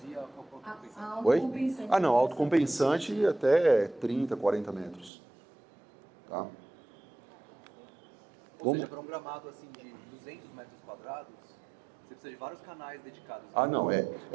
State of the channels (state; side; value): drops out; left; at 5.1 s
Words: e a autocompensante? Oi? Não, autocompensante até 30, 40 metros. Tá? Ou seja, para um gramado assim de 200 metros quadrados, você precisa de vários canais dedicados. Não, é